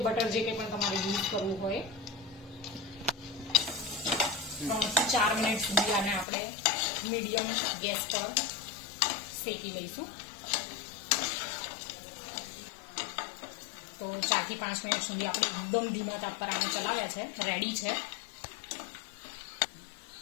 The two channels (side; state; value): right; drops out; at 6.2 s